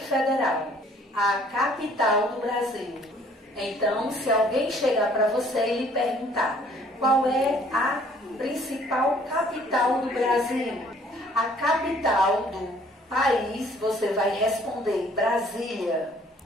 Federal, a capital do Brasil. Então, se alguém chegar para você e lhe perguntar qual é a principal capital do Brasil, a capital do país, você vai responder Brasília,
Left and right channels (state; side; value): normal; both; correlation 0.58